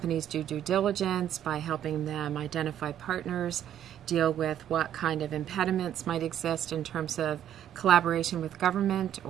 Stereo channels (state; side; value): quieter; left; 10.7 dB